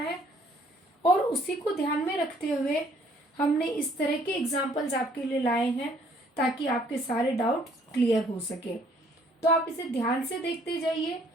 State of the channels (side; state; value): both; normal; correlation 0.62